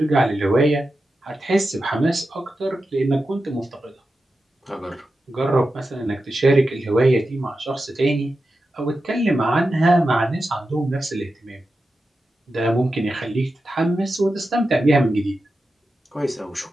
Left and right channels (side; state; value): both; normal; correlation 0.91